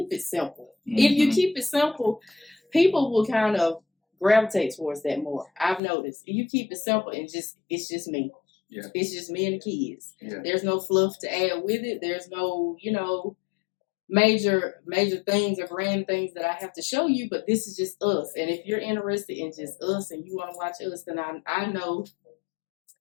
it simple. Mm-hmm. If you keep it simple, people will kind of gravitate towards that more. I've noticed. If you keep it simple and it's just me. Yeah. It's just me and the kids. Yeah. There's no fluff to add with it. There's no, major things or grand things that I have to show you, but this is just us. And if you're interested in just us and you want to watch us, then I know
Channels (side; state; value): right; drops out; at 5.8 s